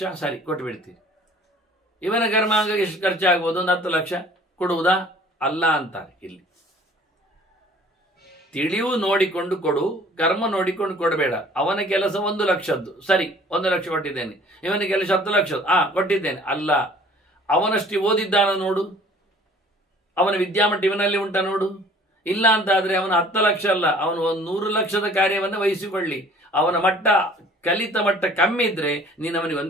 ಸರಿ ಕೊಟ್ಟು ಬಿಡ್ತೀರಿ. ಇವನ ಕರ್ಮಾಂಗಕ್ಕೆ ಎಷ್ಟು ಖರ್ಚಾಗ್ಬೋದು? 10 ಲಕ್ಷ ಕೊಡುವುದಾ? ಅಲ್ಲ ಅಂತಾರೆ ಇಲ್ಲಿ. ತಿಳಿವು ನೋಡಿಕೊಂಡು ಕೊಡು, ಕರ್ಮ ನೋಡಿಕೊಂಡು ಕೊಡಬೇಡ. ಅವನ ಕೆಲಸ 1 ಲಕ್ಷದ್ದು, ಸರಿ 1 ಲಕ್ಷ ಕೊಟ್ಟಿದ್ದೇನೆ. ಇವನ ಕೆಲಸ 10 ಲಕ್ಷದ್ದು, ಕೊಟ್ಟಿದ್ದೇನೆ. ಅಲ್ಲ, ಅವನಷ್ಟು ಓದಿದ್ದಾನ ನೋಡು, ಅವನ ವಿದ್ಯಾಮಟ್ಟ ಇವನಲ್ಲಿ ಉಂಟ ನೋಡು. ಇಲ್ಲ ಅಂತ ಆದ್ರೆ ಅವನ 10 ಲಕ್ಷ ಅಲ್ಲ, ಅವನು 100 ಲಕ್ಷದ ಕಾರ್ಯವನ್ನು ವಹಿಸಿಕೊಳ್ಳಿ. ಅವನ ಮಟ್ಟ, ಕಲಿತ ಮಟ್ಟ ಕಮ್ಮಿ ಇದ್ರೆ ನೀನು ಅವನಿಗೆ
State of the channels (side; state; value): both; normal; correlation 0.52